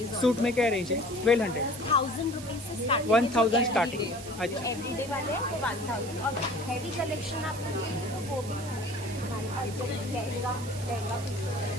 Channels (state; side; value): noise; right; hiss, 14 dB below the sound